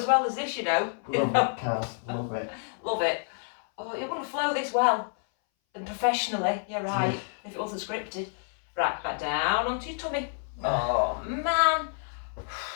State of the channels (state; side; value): silent; right; 59 dB below the other